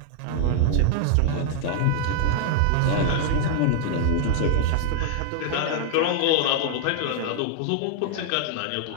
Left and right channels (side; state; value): both; different; correlation -0.01